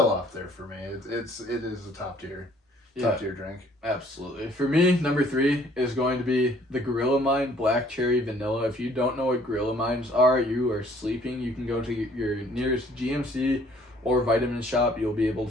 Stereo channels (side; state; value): both; normal; correlation 0.59